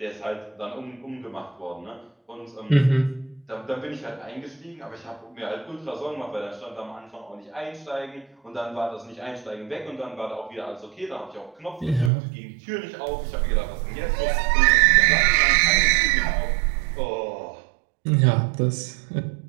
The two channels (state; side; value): drops out; left; at 12.1 s